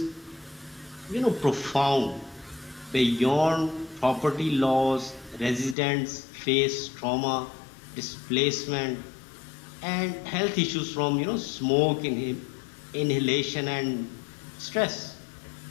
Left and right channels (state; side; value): drops out; right; at 5.8 s